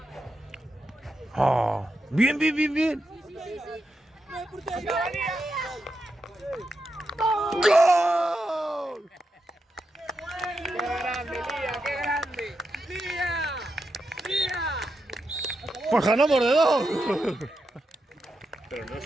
Oh, bien, bien, bien, bien. ¡Gol! ¡Qué grande, Lía! ¡Qué grande! ¡Lía! ¡Lía! Pues ganamos de dos. Pero no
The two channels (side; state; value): both; normal; correlation 0.86